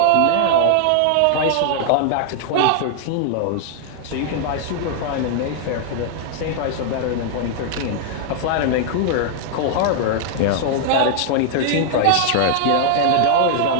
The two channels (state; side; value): different; both; correlation -0.01